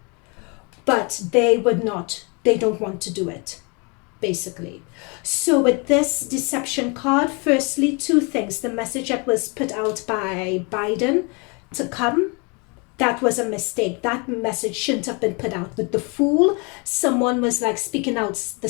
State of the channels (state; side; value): quieter; right; 31.7 dB